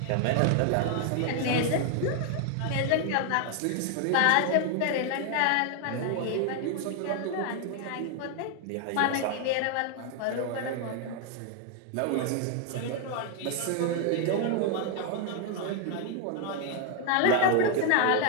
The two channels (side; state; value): both; different; correlation 0.00